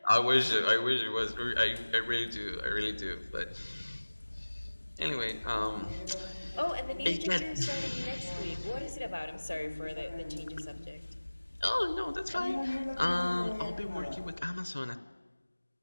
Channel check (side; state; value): both; inverted; correlation -1.00